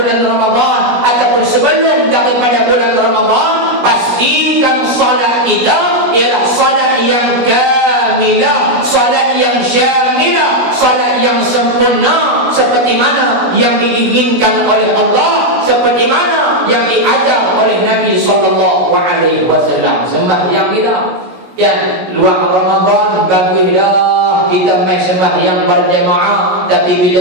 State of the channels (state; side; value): late; left; 17 ms